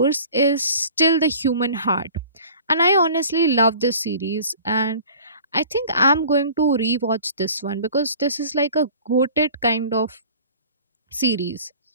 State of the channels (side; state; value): both; inverted; correlation -0.45